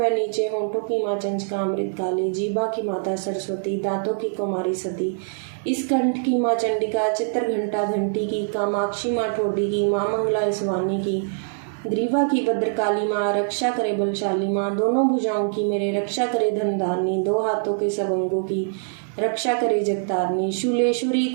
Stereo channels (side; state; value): left; silent; digital silence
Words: नीचे होंठों की माँ चंचका अमृत काली। जीभा की माता सरस्वती, दांतों की कुमारी सती। इस कंठ की माँ चंडिका, चित्र घंटा घंटी की। कामाक्षी माँ ठोडी की, माँ मंगला इसवानी की। ग्रीवा की भद्रकाली माँ, रक्षा करे बलशाली माँ। दोनों भुजाओं की मेरे, रक्षा करे धनधारनी। दो हाथों के सब अंगों की, रक्षा करे जगतारनी। शूलेश्वरी